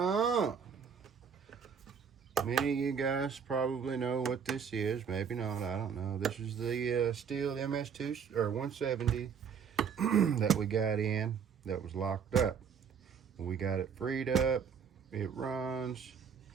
Many of you guys probably know what this is. Maybe not. I don't know. This is the Stihl MS170 that we got in that was locked up. We got it freed up. It runs,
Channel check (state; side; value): quieter; left; 6.9 dB